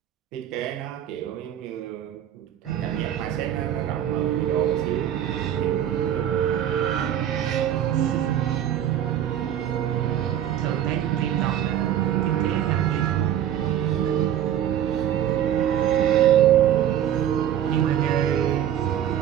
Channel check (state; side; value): quieter; left; 10.8 dB